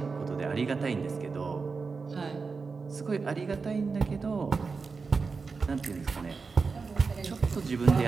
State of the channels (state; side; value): quieter; left; 4.7 dB